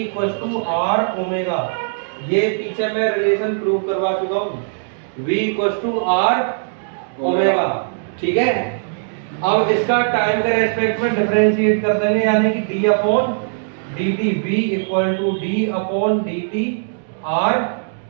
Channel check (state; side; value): silent; left; digital silence